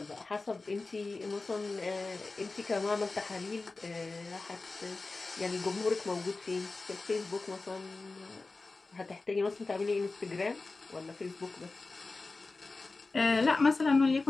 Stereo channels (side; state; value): right; quieter; 3.6 dB